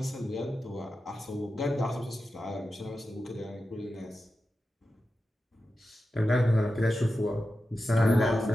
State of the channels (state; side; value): normal; both; correlation 0.91